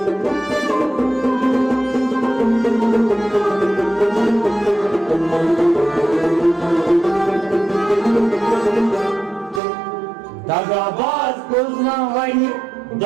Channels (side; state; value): left; drops out; at 9.6 s